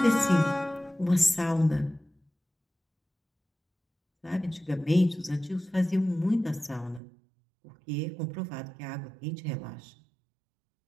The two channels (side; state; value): left; drops out; at 7.0 s